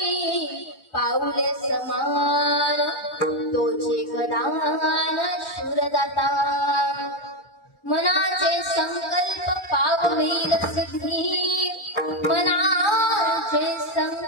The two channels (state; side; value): late; right; 1.4 ms